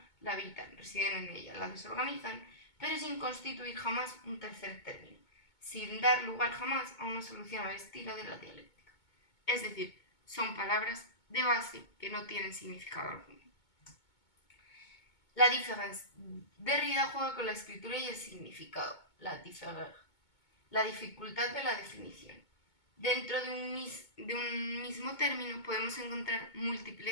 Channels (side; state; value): right; late; 2.2 ms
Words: la habitan, residen en ella, la desorganizan, pero sin constituir jamás un tercer término, sin dar lugar jamás a una solución al estilo de la dialéctica. Es decir, son palabras de base que no tienen significado alguno. La différence. Derrida juega con la escritura y el significado, la différer, la dificultad de la definición. Dentro de un mismo término podemos encontrar